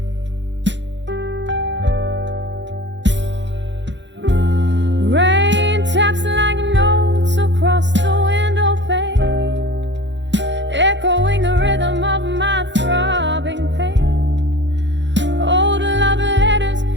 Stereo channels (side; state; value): left; late; 0.53 ms